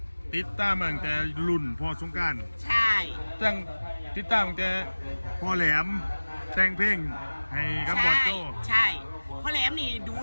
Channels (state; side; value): inverted; both; correlation -1.00